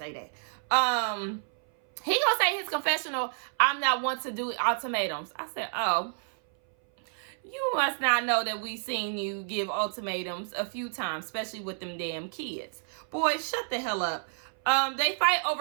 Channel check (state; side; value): silent; left; 57 dB below the other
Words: that. He gonna say his confessional, I'm not one to do ultimatums. I said, oh, you must not know that we seen you give ultimatums a few times, especially with them damn kids. Boy, shut the hell up. They fight